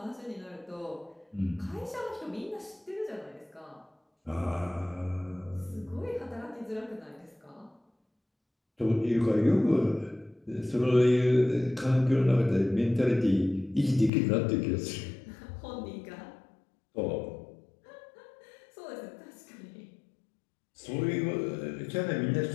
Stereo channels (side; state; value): right; drops out; at 14.1 s